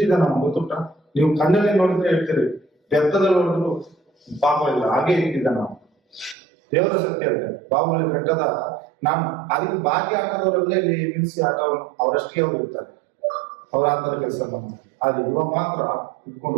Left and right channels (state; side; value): drops out; left; at 6.4 s